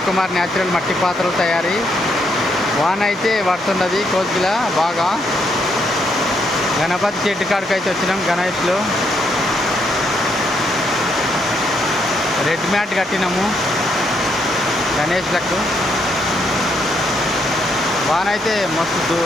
న్యాచురల్ మట్టి పాత్రలు తయారీ. వాన అయితే పడుతున్నది కోసిలా బాగా. గణపతి చెట్టు కాడికి అయితే వచ్చినాం. గణేష్లో రెడ్ మ్యాట్ కట్టినాము గణేష్లకు. వాన అయితే మస్తు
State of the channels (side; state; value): both; normal; correlation 0.75